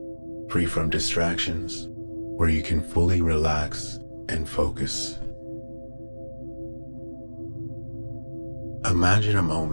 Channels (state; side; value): inverted; both; correlation -1.00